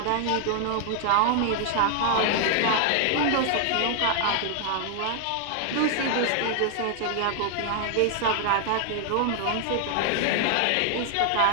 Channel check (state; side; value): different; both; correlation 0.00